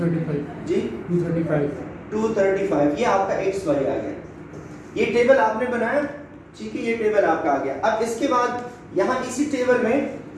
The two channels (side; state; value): both; identical; correlation 1.00